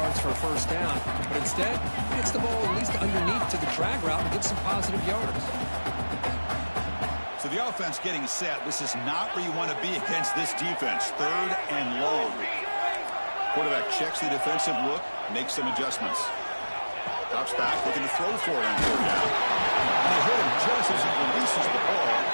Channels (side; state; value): both; inverted; correlation -1.00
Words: for a first down. But instead, he gets the ball at least underneath to the drag route and gets some positive yards. So the offense getting set. This is not where you want to be against this defense. Third and long. Quarterback checks the defensive look, makes some adjustments. Drops back, looking to throw for it on third down. And they hit him just as he releases the ball.